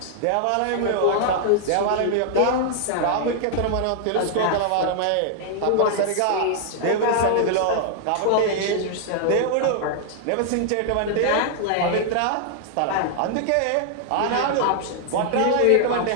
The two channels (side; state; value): both; different; correlation -0.01